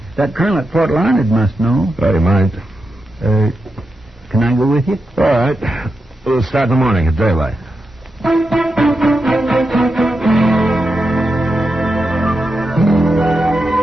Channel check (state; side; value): normal; both; correlation 0.88